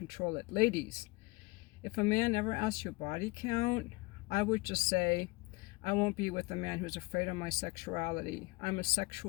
it. Ladies, if a man ever asks you body count, I would just say, I won't be with a man who's afraid of my sexuality. I'm a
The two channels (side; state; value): right; quieter; 24.8 dB